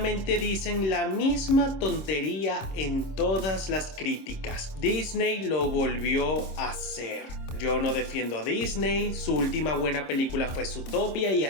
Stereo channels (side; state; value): right; late; 26 ms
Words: dicen la misma tontería en todas las críticas. Disney lo volvió a hacer. Yo no defiendo a Disney, su última buena película fue Zootopia y